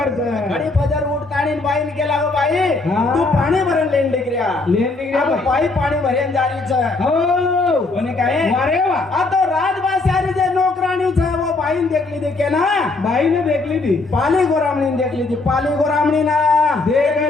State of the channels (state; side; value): quieter; right; 3.4 dB